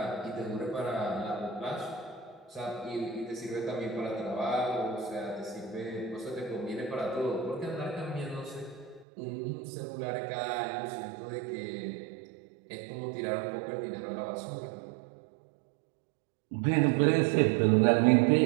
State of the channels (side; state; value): left; drops out; at 9.1 s